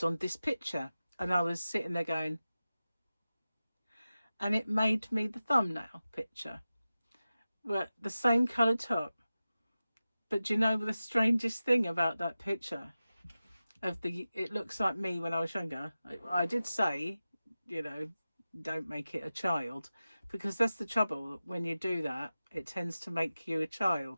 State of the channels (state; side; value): inverted; both; correlation -0.94